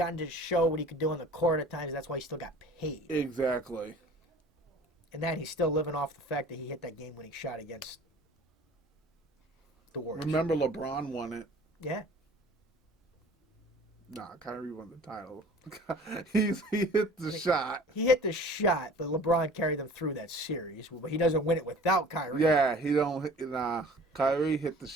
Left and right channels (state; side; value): normal; both; correlation 0.45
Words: to show what he could do on the court at times. That's why he still got paid. Exactly. And then he's still living off the fact that he hit that game-winning shot against the Warriors. Remember LeBron won it. Yeah. Nah, Kyrie won the title. he hit the shot. He hit the shot, but LeBron carried them through that series. But he doesn't win it without Kyrie. Yeah, he don't. Nah, Kyrie hit the